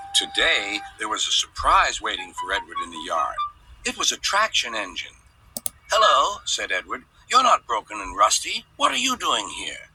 Today, there was a surprise waiting for Edward in the yard. It was a traction engine. Hello, said Edward. You're not broken and rusty. What are you doing here?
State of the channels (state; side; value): identical; both; correlation 1.00